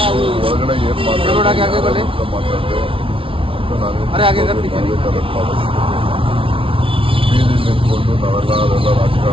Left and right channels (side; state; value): left; late; 0.26 ms